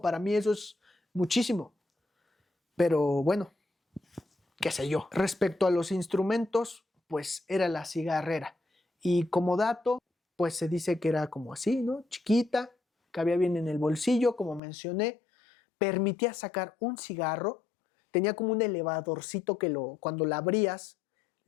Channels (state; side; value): drops out; right; at 14.6 s